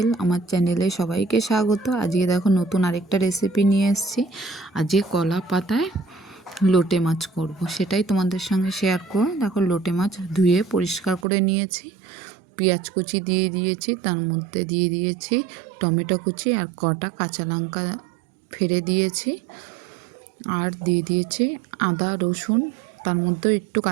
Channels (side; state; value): left; drops out; at 11.2 s